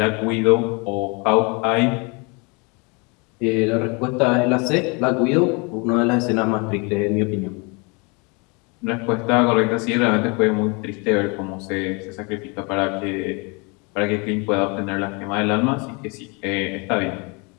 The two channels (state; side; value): quieter; right; 30.6 dB